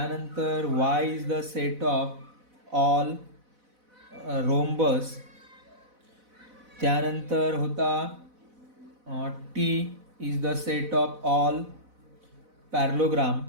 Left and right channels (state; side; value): late; left; 4.0 ms